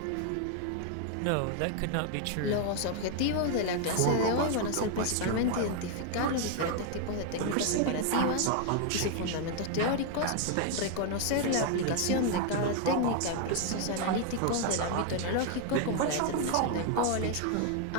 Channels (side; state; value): both; different; correlation 0.00